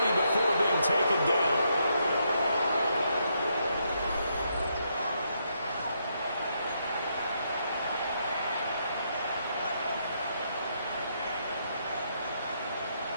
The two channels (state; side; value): inverted; both; correlation -0.77